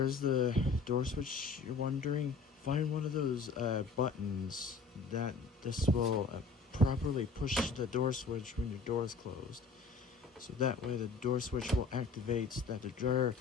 the door switch, you're wondering? Find one of those buttons that this will properly push the door switch when your door is closed. So that way the door switch will activate that the dryer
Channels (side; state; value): right; quieter; 4.4 dB